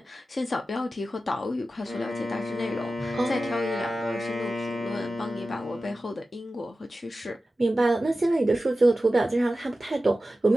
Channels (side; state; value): both; normal; correlation 0.94